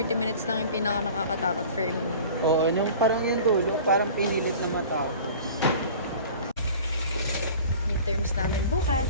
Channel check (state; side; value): inverted; both; correlation -0.42